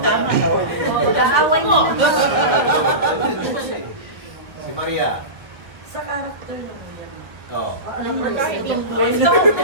Tama na. Kaaway mo. Si Maria. Sa character mo yan. Oo. Alam mo yung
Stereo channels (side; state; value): left; late; 1.1 ms